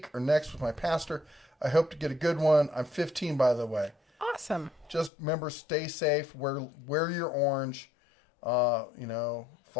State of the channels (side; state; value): right; drops out; at 5.1 s